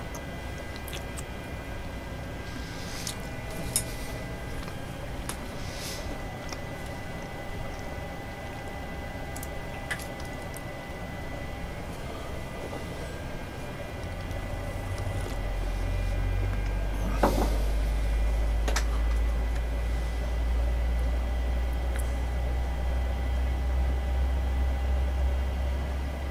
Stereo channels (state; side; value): identical; both; correlation 1.00